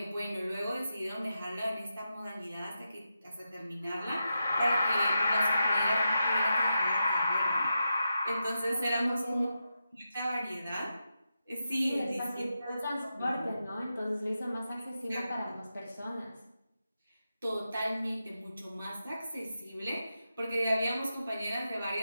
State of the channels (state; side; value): inverted; both; correlation -0.88